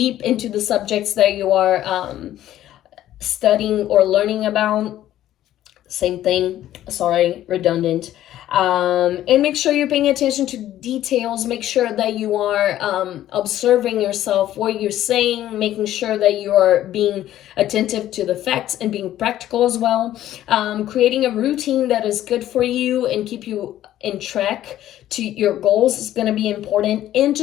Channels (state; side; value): quieter; right; 12.9 dB